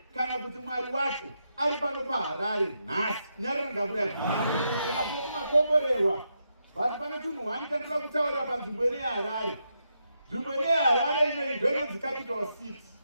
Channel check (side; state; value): both; inverted; correlation -0.82